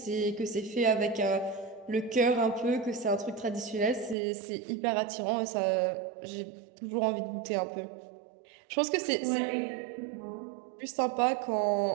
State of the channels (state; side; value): drops out; left; at 4.2 s